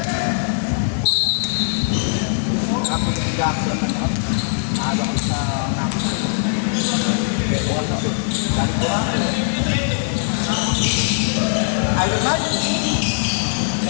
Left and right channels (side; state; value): right; silent; digital silence